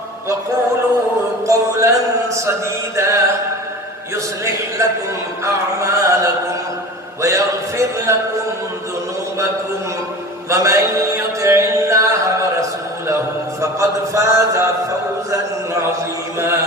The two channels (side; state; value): both; normal; correlation 0.36